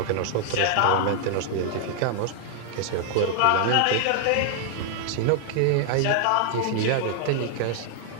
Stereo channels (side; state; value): both; different; correlation 0.00